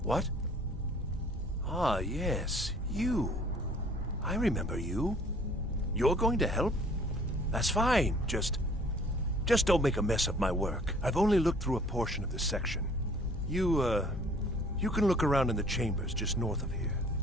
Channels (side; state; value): both; normal; correlation 0.55